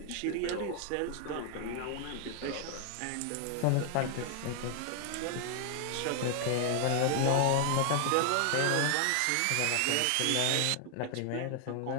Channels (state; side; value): different; both; correlation 0.00